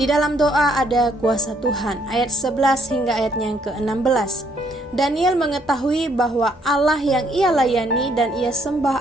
dalam doa ada kuasa Tuhan. Ayat 11 hingga ayatnya yang ke-16. Daniel mengetahui bahwa Allah yang ia layani dan ia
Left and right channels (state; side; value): normal; both; correlation 0.69